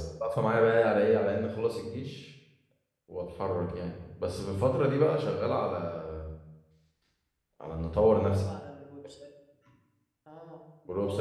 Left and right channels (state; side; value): identical; both; correlation 1.00